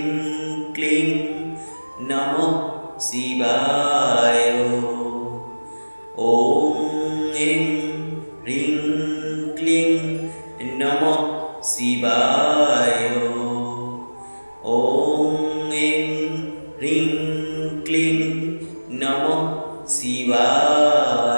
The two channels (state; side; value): inverted; both; correlation -1.00